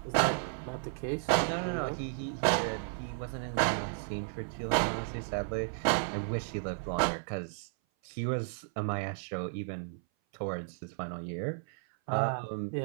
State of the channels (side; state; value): left; silent; 55 dB below the other